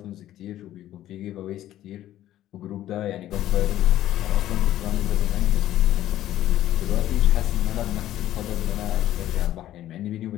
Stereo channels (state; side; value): quieter; right; 13.2 dB